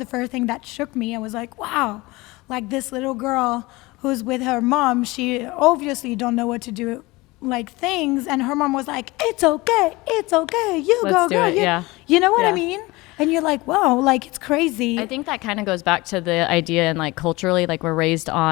first thing that shook me. I was like, wow, like this little girl who's with her mom, she obviously don't know what to do, like things. And her mom was like, it's okay, you Let's go, do girl. it, yeah. You know what I Yeah. mean? And you're like, wow, like it's crazy. I think that kind of goes back to the idea and like culturally, like we're raised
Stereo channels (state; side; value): quieter; right; 22.0 dB